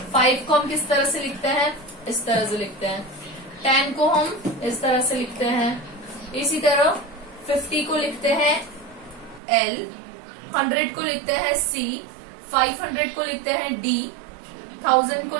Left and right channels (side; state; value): left; drops out; at 9.4 s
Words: 5 को हम किस तरह से लिखते हैं, इस तरह से लिखते हैं. 10 को हम इस तरह से लिखते हैं. इसी तरह 50 को लिखते हैं L, 100 को लिखते हैं C, 500 को लिखते हैं D, 1000 को